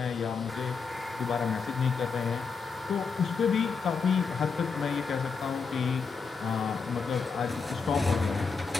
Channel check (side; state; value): right; quieter; 5.2 dB